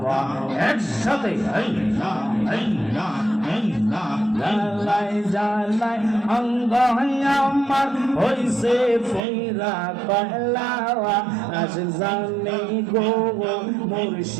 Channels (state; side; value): drops out; left; at 9.2 s